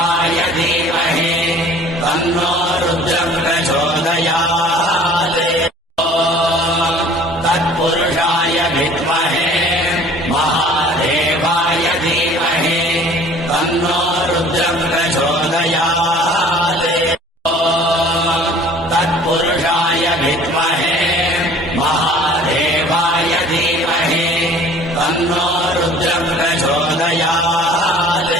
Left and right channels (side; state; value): both; normal; correlation 0.49